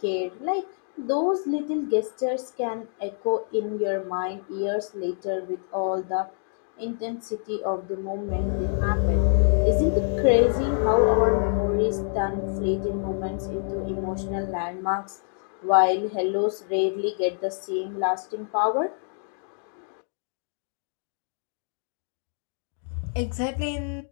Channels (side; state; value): right; silent; 61 dB below the other